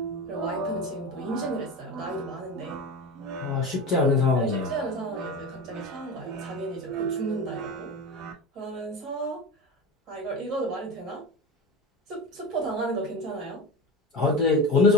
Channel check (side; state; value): both; normal; correlation 0.28